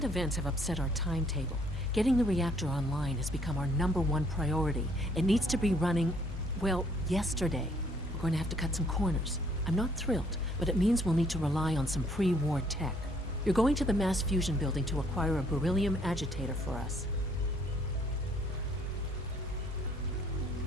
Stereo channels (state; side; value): normal; both; correlation 0.64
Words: events have upset our timetable. Getting the reactor online has become our #1 priority. It needs to be running, well, yesterday. We're going to have to cut some corners. I'm not thrilled, but it means we'll need to rely on some pre-war tech. You're going to the mass fusion building to acquire a beryllium agitator for us.